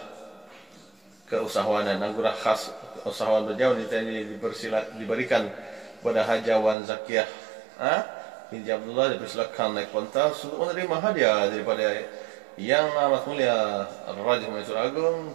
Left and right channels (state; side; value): drops out; left; at 6.8 s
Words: keusahawanan. Anugerah khas usahawan berjauh ini diberikan kepada Hajawan Zakiyah binti Abdullah, dipersilakan naik pentas untuk menerima hadiah daripada yang amat mulia Raja Mansur Agung